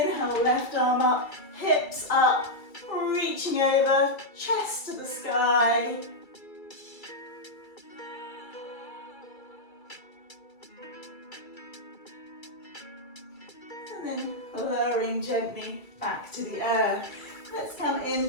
left arm up, hips up, reaching over, chest to the sky. And then lowering gently back to the earth. Let's come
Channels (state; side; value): late; right; 2.3 ms